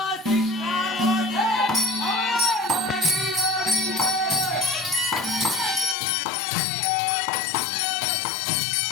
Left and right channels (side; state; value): right; drops out; at 6.0 s